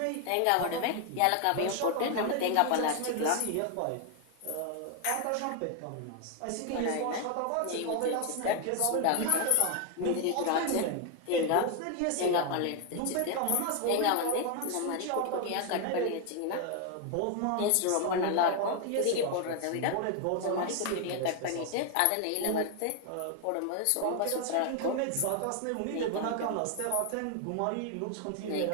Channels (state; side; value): different; both; correlation 0.01